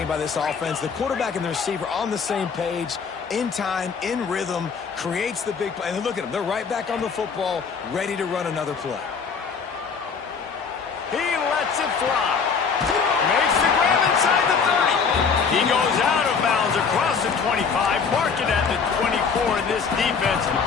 by this offense. The quarterback and the receiver on the same page, in time, in rhythm, creates the big play. And look at them. They're right back on the football, ready to run another play. He lets it fly. Makes the grab inside the 30. He goes out of bounds across the 25, mark it at the 24. In this defense,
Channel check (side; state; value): right; quieter; 5.7 dB